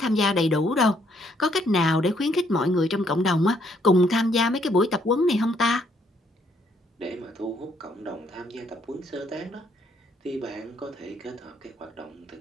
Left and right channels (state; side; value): normal; both; correlation 0.69